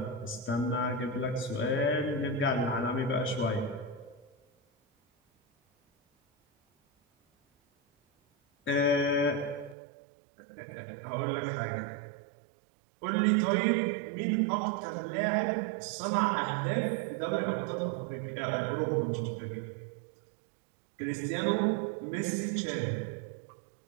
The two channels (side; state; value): left; drops out; at 9.8 s